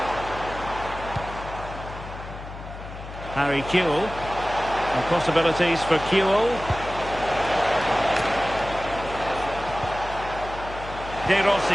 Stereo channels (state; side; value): noise; left; hum, 12 dB below the sound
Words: Harry Kewell. And possibilities for Kewell.